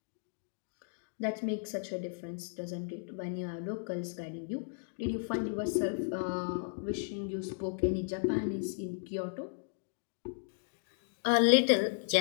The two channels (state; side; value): silent; right; digital silence